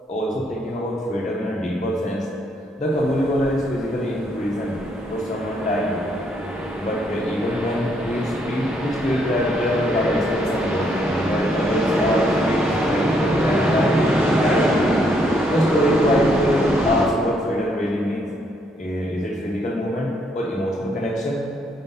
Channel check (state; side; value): normal; both; correlation 0.71